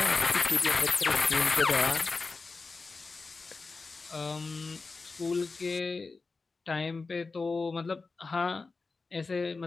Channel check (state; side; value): quieter; right; 4.1 dB